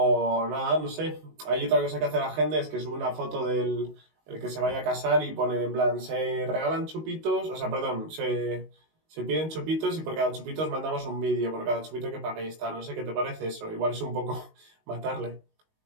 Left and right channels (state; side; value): late; left; 19 ms